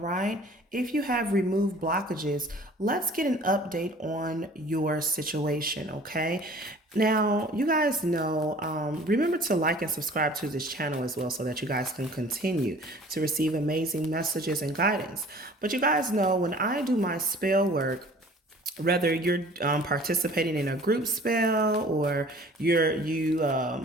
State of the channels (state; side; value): normal; both; correlation 0.49